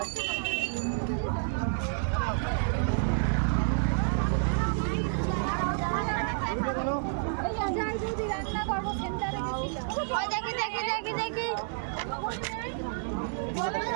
রান্না করবো সেন্টারে গেছিলাম দেখি দেখি দেখি দেখি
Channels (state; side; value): silent; left; digital silence